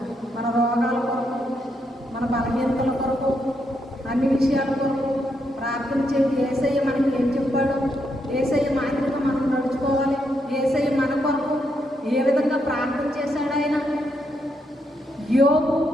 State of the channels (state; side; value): normal; both; correlation 0.79